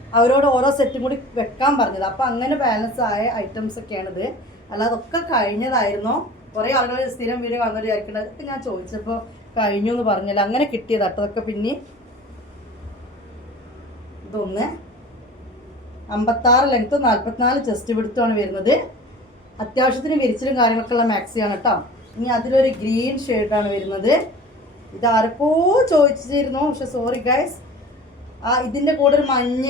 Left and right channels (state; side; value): normal; both; correlation 0.41